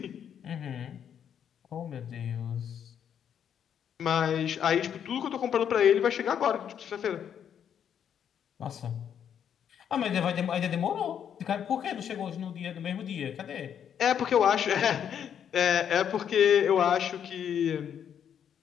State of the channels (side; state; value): right; quieter; 8.7 dB